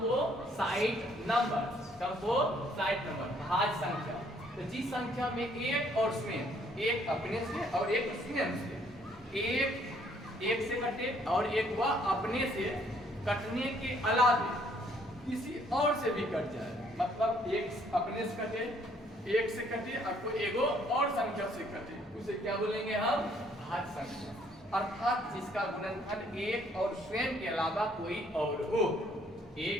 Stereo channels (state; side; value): normal; both; correlation 0.64